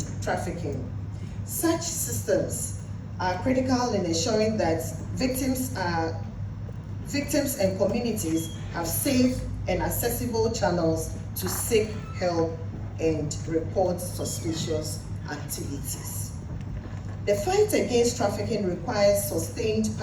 trafficking. Such systems are critical in ensuring that victims and communities have safe and accessible channels to seek help and report suspicious activities. The fight against trafficking requires sustained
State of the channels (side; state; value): both; identical; correlation 1.00